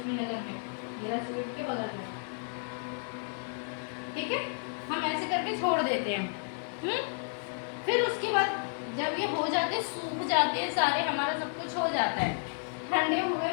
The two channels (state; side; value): silent; right; 57 dB below the other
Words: नगर में, मेरा स्वीट के बगल में। ठीक है, हम ऐसे करके छोड़ देते हैं। फिर उसके बाद जब ये हो जाते हैं, सूख जाते हैं सारे, हमारा सब कुछ हो जाता है, ठंडे हुए